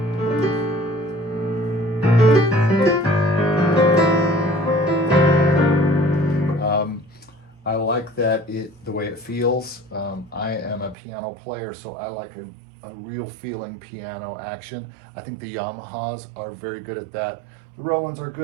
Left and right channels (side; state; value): left; drops out; at 11.0 s